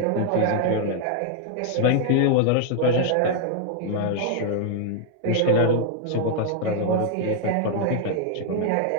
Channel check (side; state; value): both; different; correlation 0.00